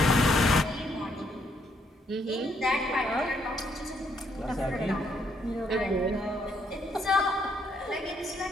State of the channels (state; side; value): normal; both; correlation 0.72